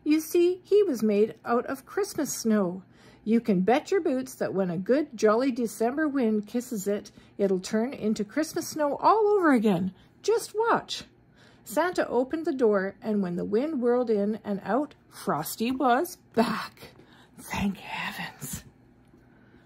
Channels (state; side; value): identical; both; correlation 1.00